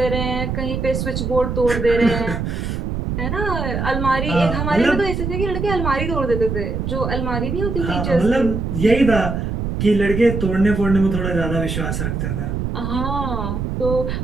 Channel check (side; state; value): right; noise; rumble, 3 dB below the sound